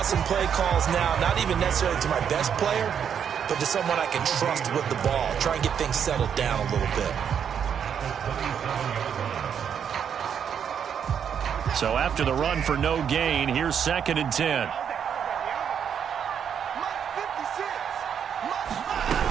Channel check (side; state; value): left; quieter; 8.0 dB